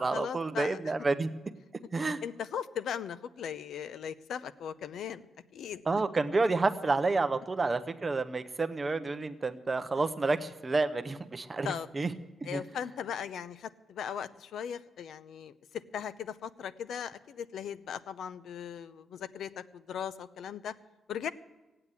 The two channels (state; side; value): normal; both; correlation 0.87